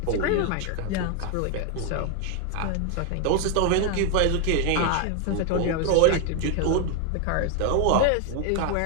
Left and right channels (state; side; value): different; both; correlation 0.01